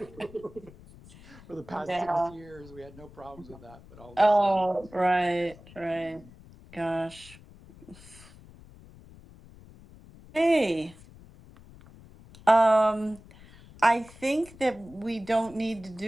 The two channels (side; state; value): left; noise; rumble, 21 dB below the sound